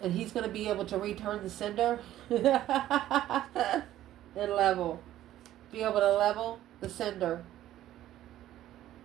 And he's going to be able to return the sender and level. Be able to level the sender.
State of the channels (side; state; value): left; quieter; 13.3 dB